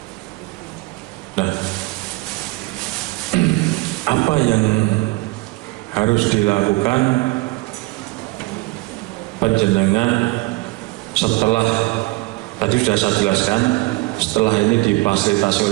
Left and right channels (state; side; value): quieter; left; 22.5 dB